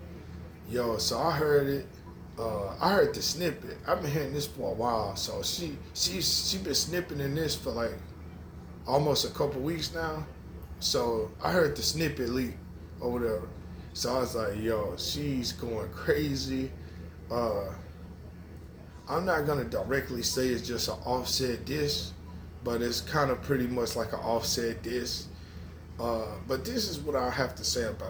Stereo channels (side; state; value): both; identical; correlation 1.00